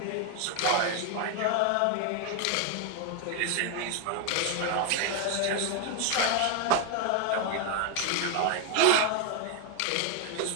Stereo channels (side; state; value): both; different; correlation 0.01